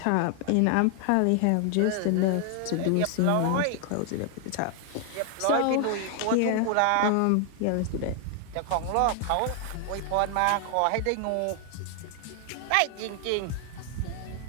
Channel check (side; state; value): both; different; correlation 0.00